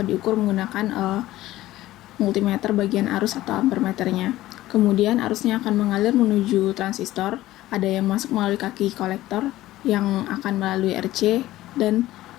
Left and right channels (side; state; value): right; quieter; 15.7 dB